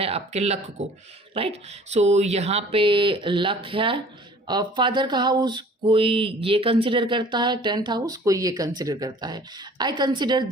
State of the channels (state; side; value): normal; both; correlation 0.50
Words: आपके लक को, राइट। सो यहाँ पे लक है। फादर का हाउस कोई ये कंसिडर करता है, टेंथ हाउस कोई ये कंसिडर करता है। I consider